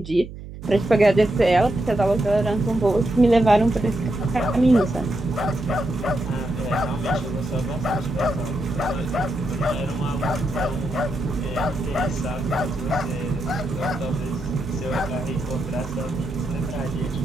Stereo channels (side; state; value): right; noise; hum, 12 dB below the sound